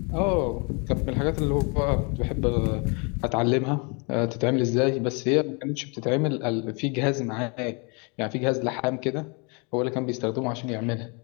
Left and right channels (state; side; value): quieter; right; 33.2 dB